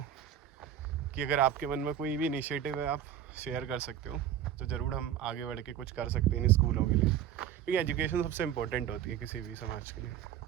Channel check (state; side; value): quieter; left; 10.1 dB